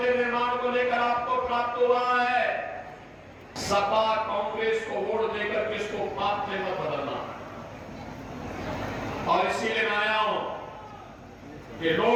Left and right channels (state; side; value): identical; both; correlation 1.00